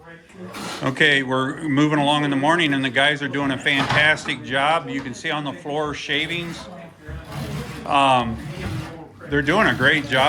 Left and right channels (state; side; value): identical; both; correlation 1.00